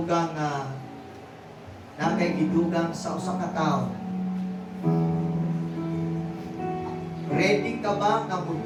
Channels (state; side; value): identical; both; correlation 1.00